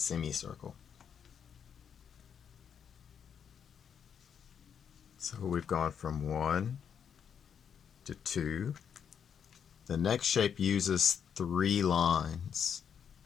So we've gone from 1 to 2. The next shape uses 3 lines.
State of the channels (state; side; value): quieter; right; 7.7 dB